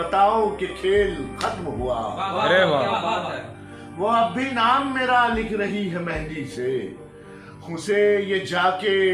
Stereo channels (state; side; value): identical; both; correlation 1.00